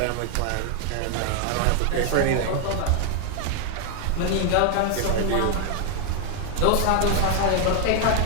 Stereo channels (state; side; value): different; both; correlation 0.00